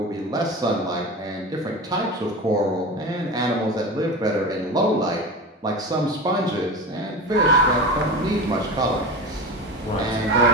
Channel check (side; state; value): both; normal; correlation 0.27